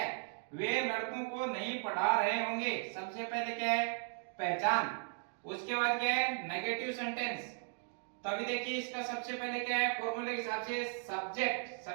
वे लड़कों को नहीं पढ़ा रहे होंगे। सबसे पहले क्या है? पहचान। उसके बाद क्या है? Negative sentence. तो अभी देखिए इसका सबसे पहले क्या है? फॉर्मूले के हिसाब से सब्जेक्ट।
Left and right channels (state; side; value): silent; left; 53 dB below the other